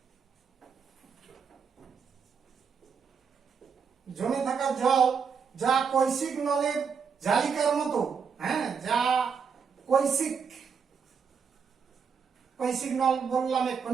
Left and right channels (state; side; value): quieter; left; 6.2 dB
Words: জল, যা কৈশিক নলের জালিকার মতো, যা কৈশিক নল বললাম